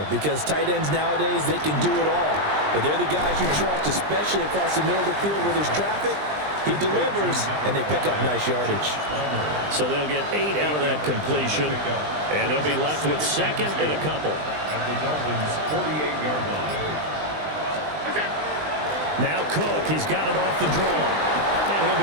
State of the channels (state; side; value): late; left; 20 ms